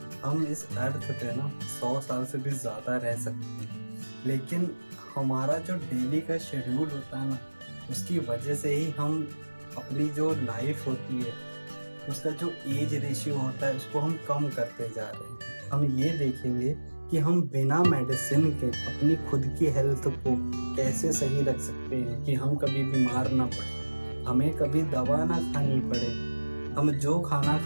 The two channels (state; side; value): inverted; both; correlation -1.00